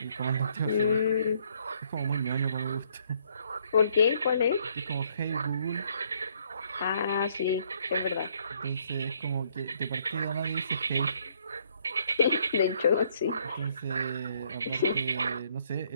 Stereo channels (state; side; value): inverted; both; correlation -0.67